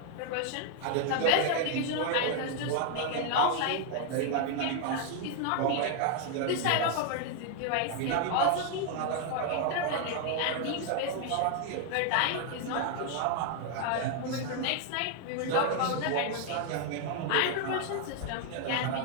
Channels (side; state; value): both; different; correlation 0.00